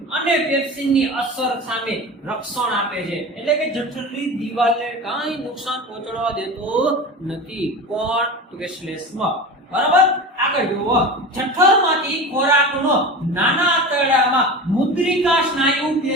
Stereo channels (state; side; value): normal; both; correlation 0.30